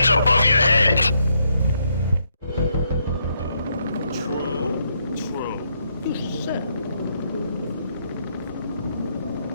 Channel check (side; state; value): both; inverted; correlation -0.76